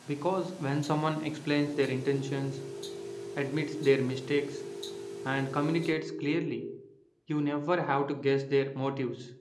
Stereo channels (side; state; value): both; identical; correlation 1.00